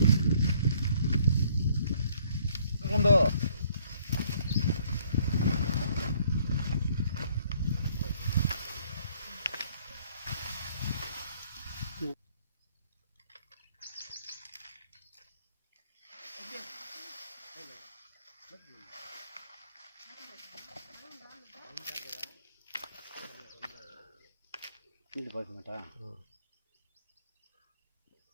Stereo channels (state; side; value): inverted; both; correlation -0.63